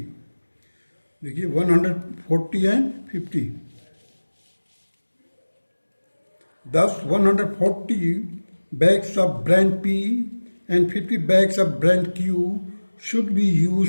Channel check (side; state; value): both; inverted; correlation -1.00